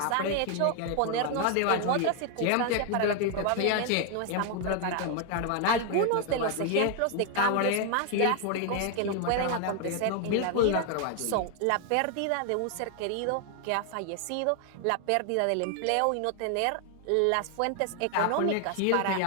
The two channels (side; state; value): both; different; correlation 0.01